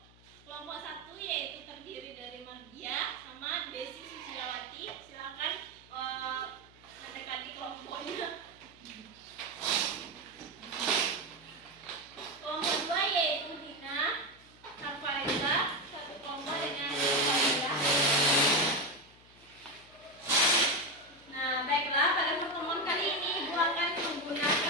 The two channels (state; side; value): noise; left; hum, 26 dB below the sound